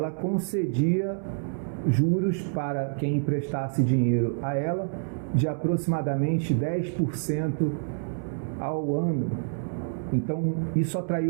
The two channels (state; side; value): silent; left; 60 dB below the other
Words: concedia juros para quem emprestasse dinheiro a ela de aproximadamente 10% ao ano. Então, isso